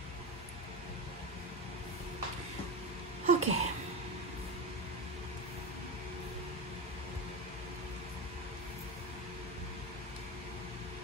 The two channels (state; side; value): normal; both; correlation 0.19